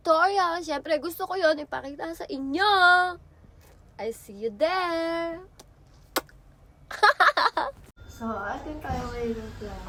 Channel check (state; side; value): identical; both; correlation 1.00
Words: Siyempre, gusto ko yon ipakita sa inyo. I see you there. So, atin tayo ngayon ng